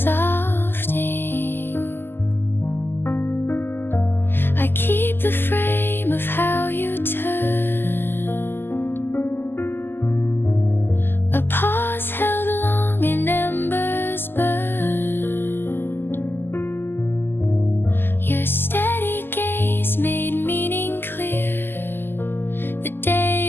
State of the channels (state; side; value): late; right; 0.10 ms